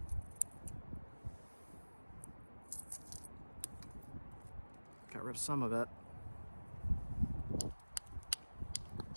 Got rid of some of it.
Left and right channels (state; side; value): inverted; both; correlation -1.00